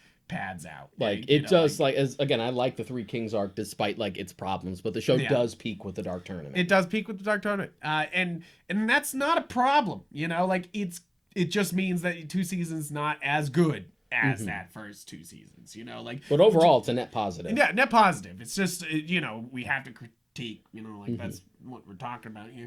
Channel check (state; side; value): identical; both; correlation 1.00